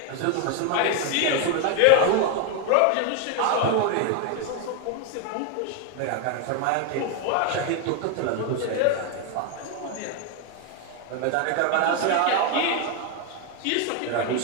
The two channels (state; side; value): different; both; correlation 0.01